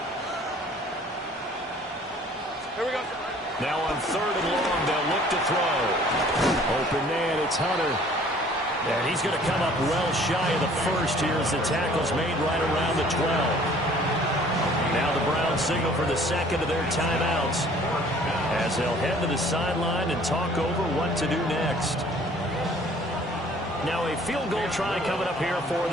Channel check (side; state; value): both; normal; correlation 0.54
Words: Here we go. Now on 3rd and long, they'll look to throw. Open man, it's Hunter. And he's going to come up well shy of the first here as the tackle's made right around the 12. Now the Browns signal for the second of their timeouts as they'll head to the sideline and talk over what to do next. Now a field goal try coming up here for